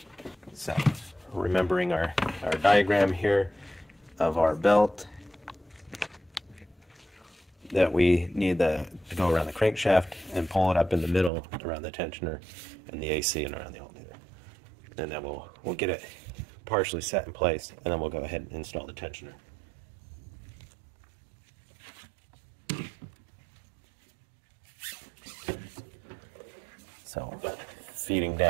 So remembering our diagram here of our belt, that we need to go around the crankshaft and pull it up in the middle around the tensioner and the AC and around the alternator. and then we'll get it partially set in place, and then we'll go ahead and install the tensioner. So feeding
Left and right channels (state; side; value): drops out; left; at 11.3 s